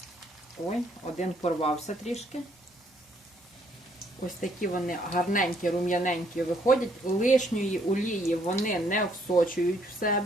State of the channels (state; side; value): normal; both; correlation 0.67